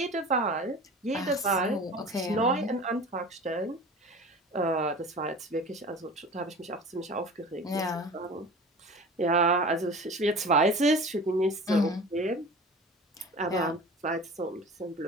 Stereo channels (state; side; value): normal; both; correlation 0.38